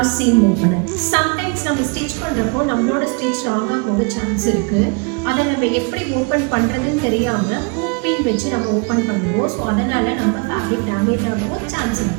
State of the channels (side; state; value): left; quieter; 33.0 dB